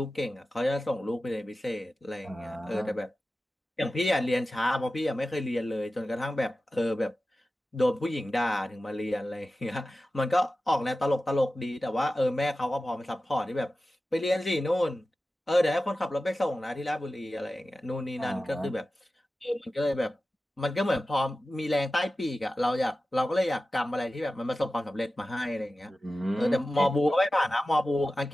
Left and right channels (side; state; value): both; normal; correlation 0.94